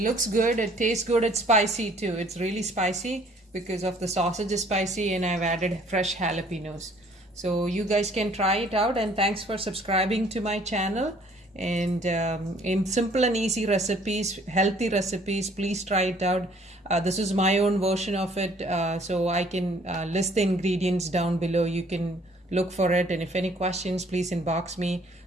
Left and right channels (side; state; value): both; normal; correlation 0.59